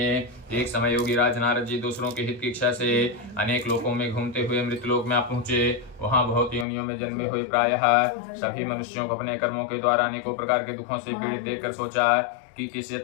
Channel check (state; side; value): drops out; right; at 6.7 s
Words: एक समय योगी राज नारद जी दूसरों के हित की इच्छा से अनेक लोकों में घूमते हुए मृतलोक में आप पहुंचे। वहां बहुत योनियों में जन्मे हुए प्रायः सभी मनुष्यों को अपने कर्मों के द्वारा अनेकों प्रकार के दुखों से पीड़ित देखकर सोचा कि किस